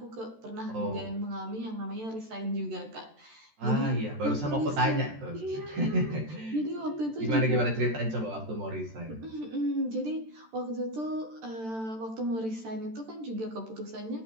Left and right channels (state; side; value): late; left; 13 ms